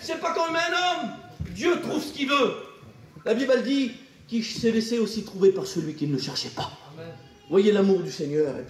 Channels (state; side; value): identical; both; correlation 1.00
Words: c'est pas comme un homme. Dieu trouve ce qu'il veut. La Bible dit qu'il s'est laissé aussi trouver par celui qui ne le cherchait pas. Amen. Voyez l'amour du Seigneur. Et